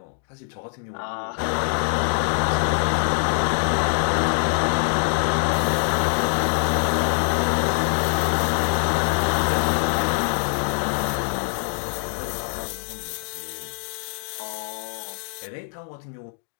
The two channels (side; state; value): right; silent; 63 dB below the other